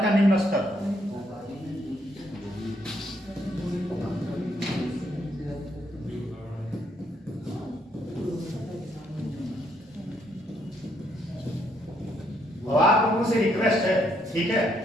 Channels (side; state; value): both; normal; correlation 0.72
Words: का निम्न स्तर। और आप लोगों से रिक्वेस्ट है, ठीक है,